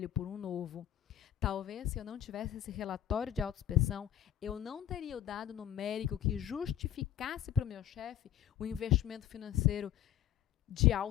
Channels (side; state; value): right; quieter; 11.1 dB